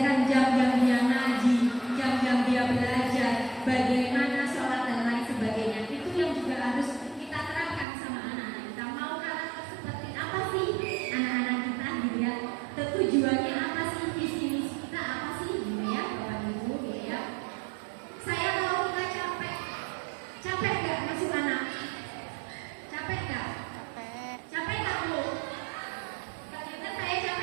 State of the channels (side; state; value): left; drops out; at 7.9 s